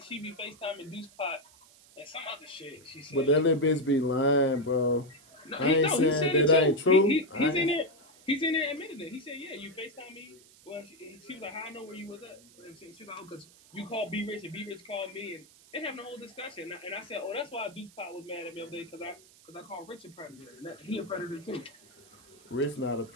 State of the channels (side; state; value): right; noise; hiss, 25 dB below the sound